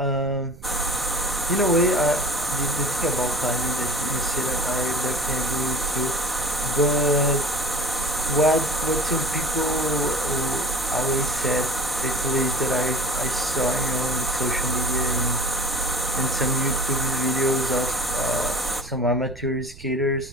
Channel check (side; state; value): right; noise; rumble, 19 dB below the sound